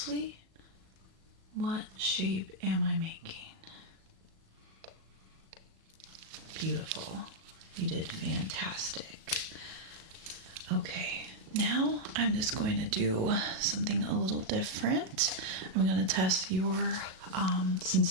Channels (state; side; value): late; left; 37 ms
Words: what shape am I making? Beautiful. You did fantastic. Okay, now I'm just going to do something a little different. I'm going to test your